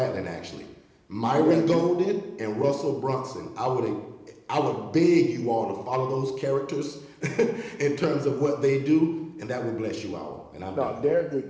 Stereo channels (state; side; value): identical; both; correlation 1.00